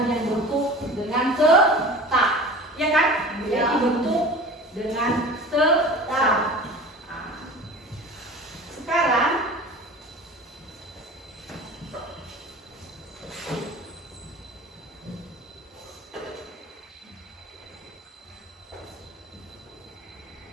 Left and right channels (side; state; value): both; normal; correlation 0.38